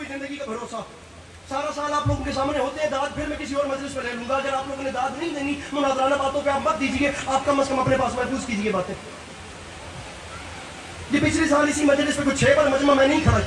जिंदगी का भरोसा, सारा साल आप लोगों के सामने होते हैं दाद, फिर मैं किसी और मजलिस में ले लूंगा। अगर आप लोगों ने दाद नहीं देनी, मुनाजराना बातों पे आप मत दीजिए, आप कम से कम अपने पास महफूज कीजिए बातें। ये पिछले साल इसी मजलिस पे कुछ 6 बार मजमा मैं नहीं खड़ा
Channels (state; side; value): identical; both; correlation 1.00